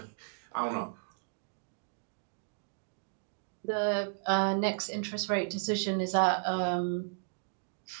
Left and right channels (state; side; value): silent; left; digital silence